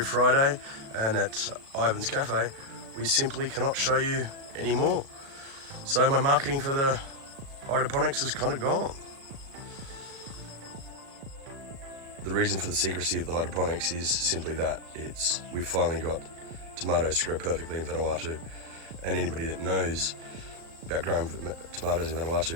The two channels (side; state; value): left; late; 36 ms